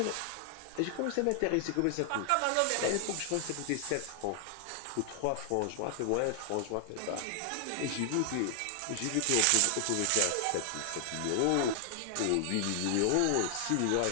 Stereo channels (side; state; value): both; different; correlation 0.00